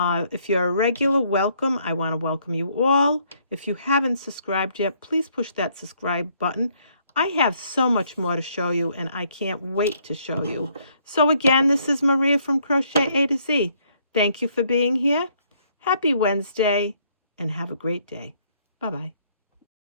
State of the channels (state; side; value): inverted; both; correlation -0.68